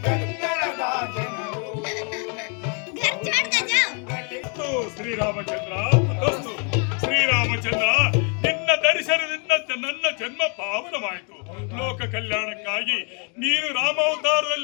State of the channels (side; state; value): right; quieter; 38.2 dB